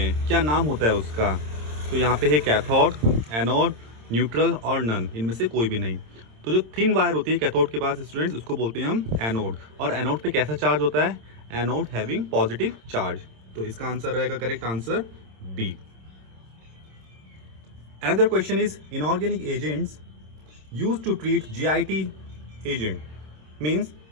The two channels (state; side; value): late; left; 26 ms